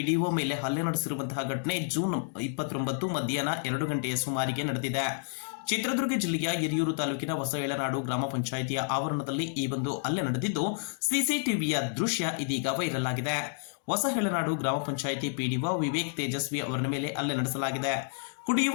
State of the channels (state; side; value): silent; right; digital silence